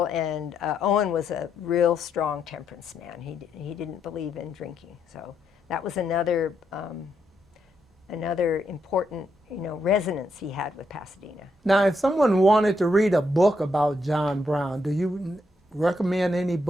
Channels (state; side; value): normal; both; correlation 0.78